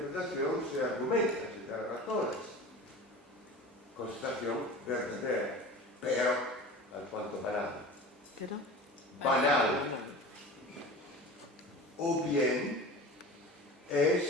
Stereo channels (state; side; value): normal; both; correlation 0.35